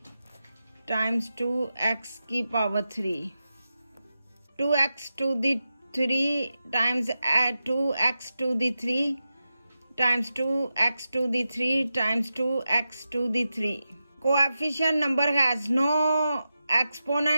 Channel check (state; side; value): inverted; both; correlation -0.91